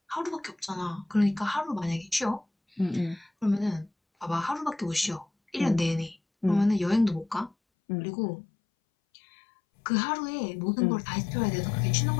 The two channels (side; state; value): right; drops out; at 7.6 s